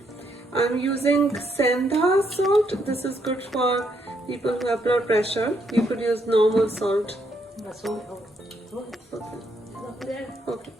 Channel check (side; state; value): both; normal; correlation 0.74